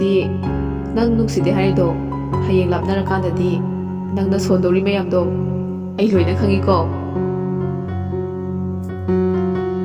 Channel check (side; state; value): both; identical; correlation 1.00